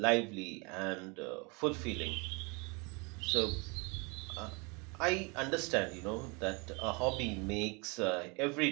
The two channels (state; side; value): quieter; left; 30.0 dB